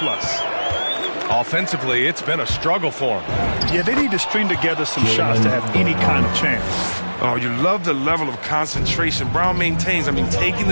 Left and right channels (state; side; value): inverted; both; correlation -1.00